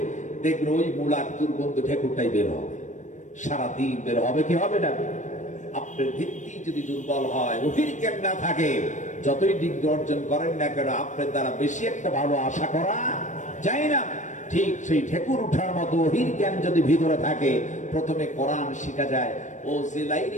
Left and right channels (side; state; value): right; late; 0.35 ms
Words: দেখবেন ওই মূলার দুর্গন্ধ ঢেকুরটাই বের হবে, সারাদিন বের হবে। কি হবে না? আপনার ভিত্তি যদি দুর্বল হয়, ওহীর জ্ঞান না থাকে, যতই ডিগ্রি অর্জন করেন না কেন, আপনার দ্বারা বেশি একটা ভালো আশা করা যায় না। ঠিক সেই ঠেকুর উঠার মতো ওহির জ্ঞান যদি ভিতরে থাকে, প্রথমে কোরআন শিখা যায়। ও যে